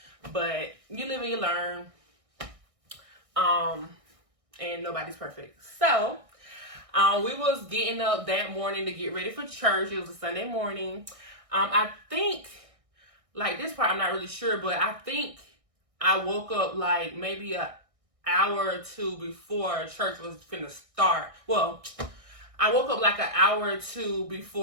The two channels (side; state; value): left; late; 1.6 ms